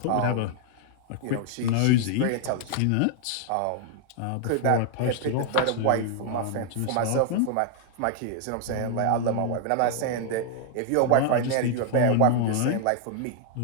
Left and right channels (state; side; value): different; both; correlation 0.00